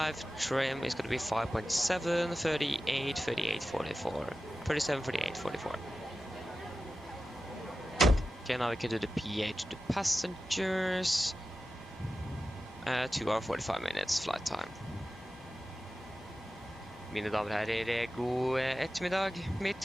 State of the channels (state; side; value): normal; both; correlation 0.93